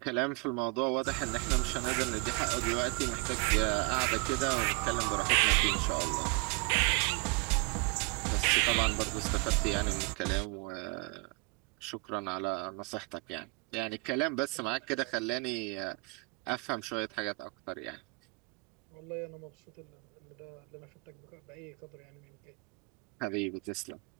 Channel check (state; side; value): quieter; left; 30.6 dB